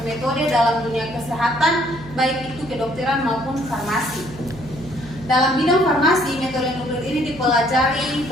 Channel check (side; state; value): right; noise; hum, 17 dB below the sound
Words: dalam dunia kesehatan, baik itu kedokteran maupun farmasi. Dalam bidang farmasi, metode nuklir ini dipelajari